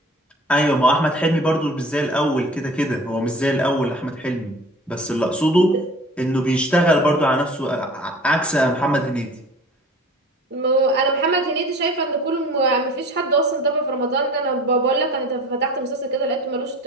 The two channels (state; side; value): normal; both; correlation 0.44